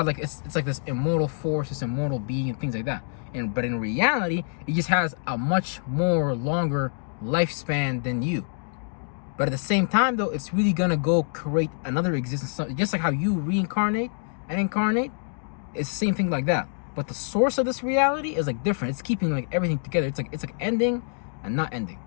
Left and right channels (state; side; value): silent; right; 61 dB below the other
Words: like it's like this immortal force, this immortal being, and things like that. But in reality, it just has a much more longer lifespan than you. But at the same time, though, it's really gonna go create another existence. Just like how you reincarnate and incarnate, it's the same thing like that. But the source of this reality is like different. It's keeping like everything together. It's like ending and not ending.